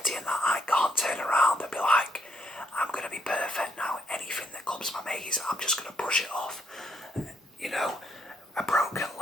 and that. I can't turn around and be like, I'm going to be perfect now. Anything that comes my maze, I'm just going to brush it off. You know, a broken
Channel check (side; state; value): both; normal; correlation 0.74